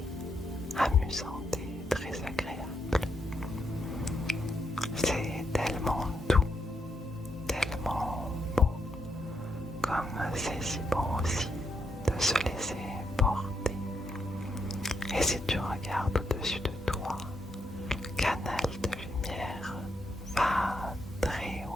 amusante et très agréable. C'est tellement doux, tellement beau, comme c'est si bon aussi de se laisser porter. Et si tu regardes au-dessus de toi, le canal de lumière va très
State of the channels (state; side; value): normal; both; correlation 0.79